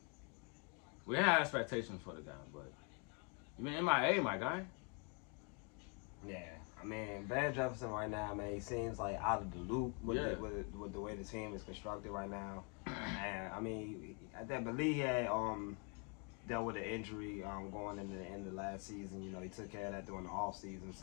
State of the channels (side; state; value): right; quieter; 36.2 dB